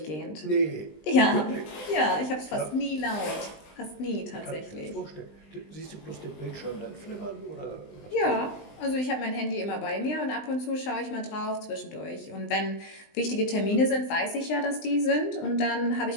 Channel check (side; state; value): right; late; 20 ms